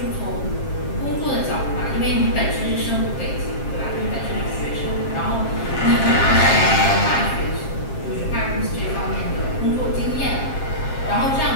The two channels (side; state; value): right; late; 7.5 ms